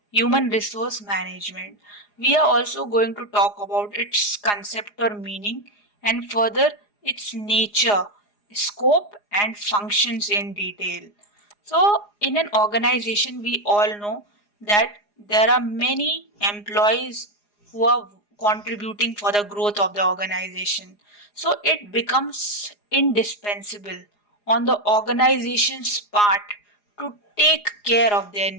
human resource management. We are also going to talk about its concept or meaning and further its nature, scope and functions in detail. So in an organization we all know that there are many employees who are contributing for the growth of the organization. So it becomes indispensable on the organization's part to take care of their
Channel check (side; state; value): right; late; 4.8 ms